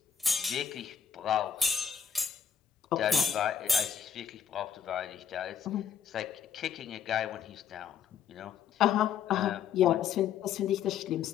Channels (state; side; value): quieter; right; 7.8 dB